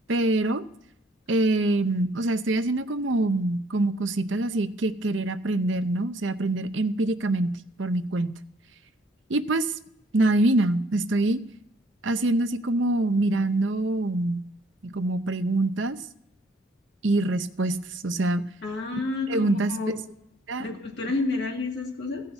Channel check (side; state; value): both; normal; correlation 0.63